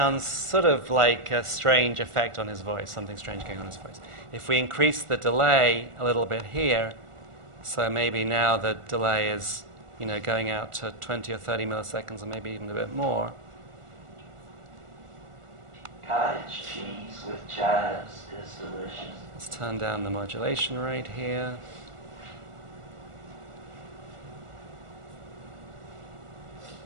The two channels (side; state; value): left; late; 1.4 ms